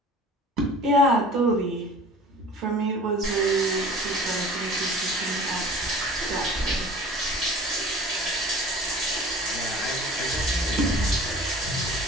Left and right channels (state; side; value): normal; both; correlation 0.44